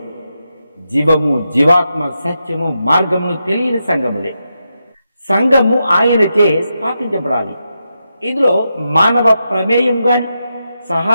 జీవము, జీవాత్మ, సత్యము, మార్గమును తెలియని సంఘములే. సంఘము ఆయనచే స్థాపించబడాలి. ఇందులో మానవ ప్రమేయం గాని,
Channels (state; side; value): inverted; both; correlation -0.86